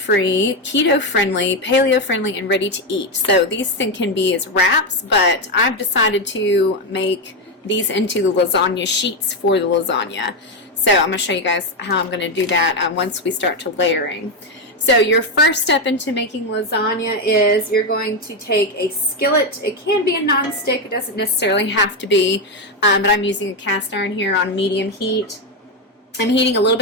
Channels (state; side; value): normal; both; correlation 0.08